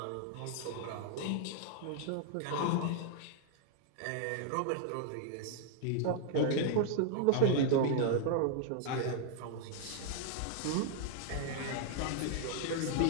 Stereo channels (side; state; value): both; different; correlation 0.00